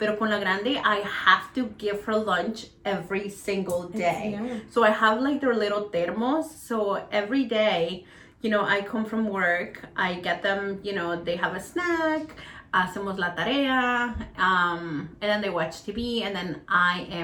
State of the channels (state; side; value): identical; both; correlation 1.00